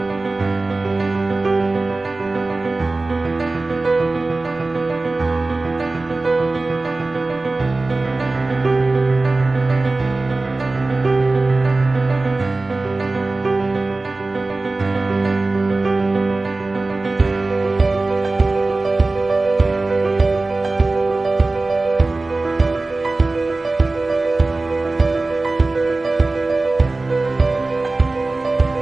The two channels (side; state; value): left; quieter; 3.3 dB